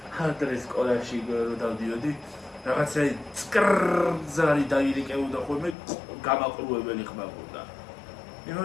ხალხი სკოლაში რო დავდიოდი, რაღაცა წკრზარი დაირეკეოდა ხოლმე გამაყრუებელი ხმაყურდა.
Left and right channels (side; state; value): right; drops out; at 5.8 s